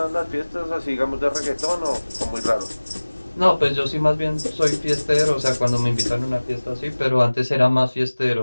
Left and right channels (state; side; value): inverted; both; correlation -1.00